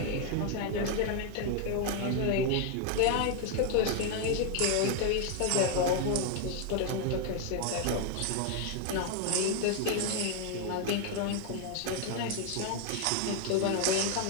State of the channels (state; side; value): different; both; correlation 0.01